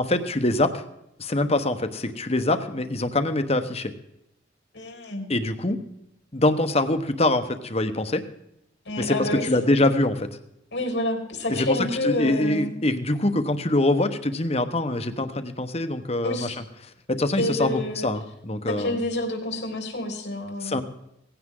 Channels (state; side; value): normal; both; correlation 0.41